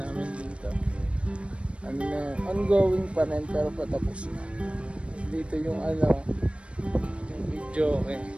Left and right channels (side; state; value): left; late; 0.060 ms